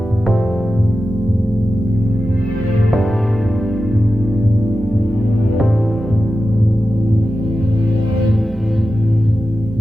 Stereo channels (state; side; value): normal; both; correlation 0.92